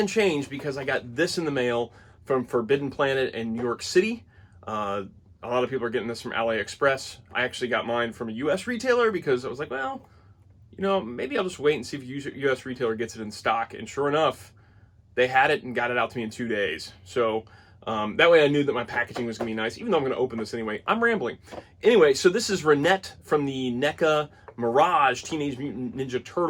changed because I got this in the mail from Forbidden Planet in New York City. A lot of people are getting this from AliExpress. I actually got mine from a US retailer because I was like, well, you know, maybe I'll just wait and see if a US retailer gets it in stock. And sure enough, they had it and got it out to me in 2 days. So that way I knew that my packaging was going to be nice, even though I'm going to open this anyway. I'm rambling. Anyway, so this is Renet from the Neca Mirage Teenage Mutant Ninja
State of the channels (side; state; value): both; identical; correlation 1.00